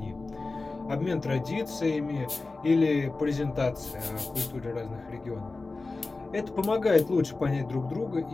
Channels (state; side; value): quieter; right; 3.6 dB